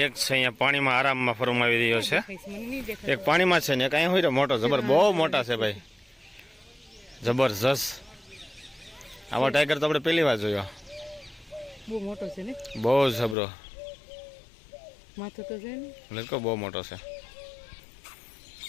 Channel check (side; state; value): right; drops out; at 13.4 s